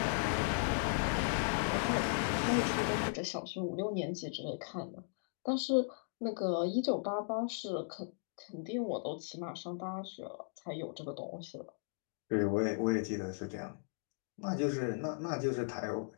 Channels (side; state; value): right; silent; digital silence